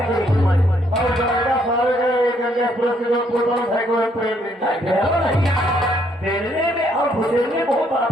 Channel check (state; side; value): normal; both; correlation 0.70